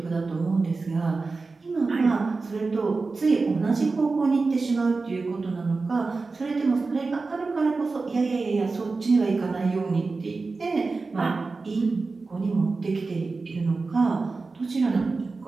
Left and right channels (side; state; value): left; quieter; 3.9 dB